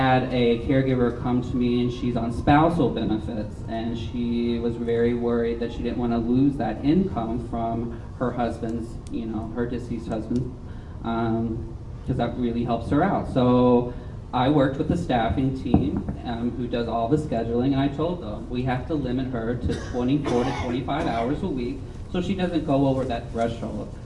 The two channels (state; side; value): identical; both; correlation 1.00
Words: a caregiver come to me and she's on spousal benefits, and she was very worried that she didn't want to lose that income from her husband's, her deceased husband, because that really helps her out. So I worked with the staffing team who does all the scheduling, and I told them we have to limit her to 24 to 25 hours a week so she doesn't go over that threshold.